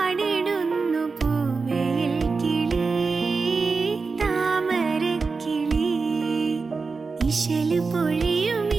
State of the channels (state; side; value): quieter; left; 4.5 dB